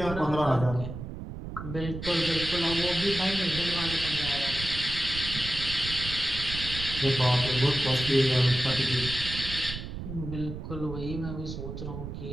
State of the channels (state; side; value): noise; right; rumble, 8 dB below the sound